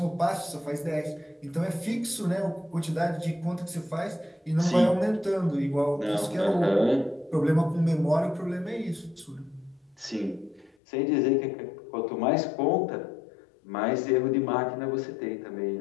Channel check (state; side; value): drops out; right; at 10.8 s